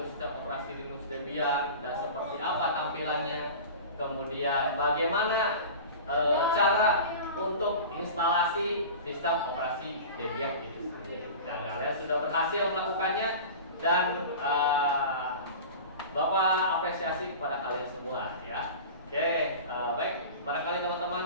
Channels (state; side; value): inverted; both; correlation -0.34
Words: sistem operasi Linux Debian, dan seperti apa tampilannya, kemudian bagaimana cara untuk instalasi sistem operasi Debian itu sendiri. Dan kalian sudah berhasil melakukannya dan Bapak apresiasi kepada kalian semua ya. Oke, baik, barangkali